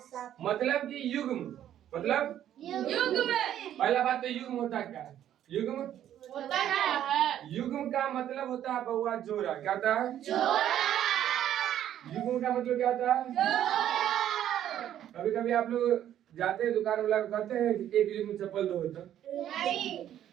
मतलब कि युग्म मतलब पहला बात तो युग्म होता क्या है? युग्म युग्म का मतलब होता है बउआ जोड़ा। क्या होता है? युग्म का मतलब क्या होता है? कभी कभी आप लोग जाते हैं दुकान वाला कहते हैं एक युग्म चप्पल दो तो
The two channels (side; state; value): left; quieter; 11.1 dB